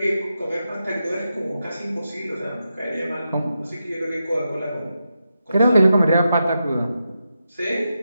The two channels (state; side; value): inverted; both; correlation -0.88